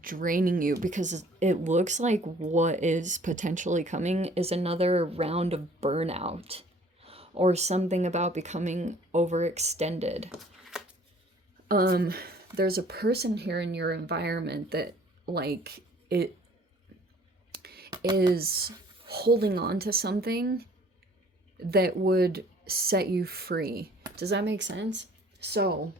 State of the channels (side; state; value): both; normal; correlation 0.54